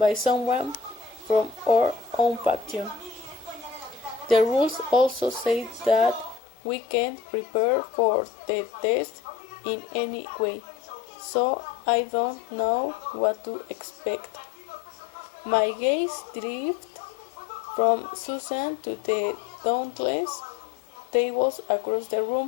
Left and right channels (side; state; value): right; drops out; at 6.4 s